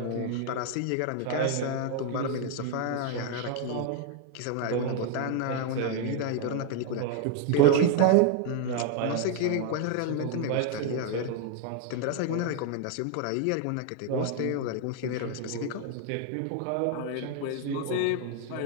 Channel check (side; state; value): both; different; correlation 0.00